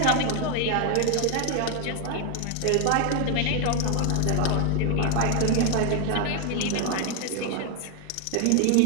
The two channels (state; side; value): different; both; correlation 0.00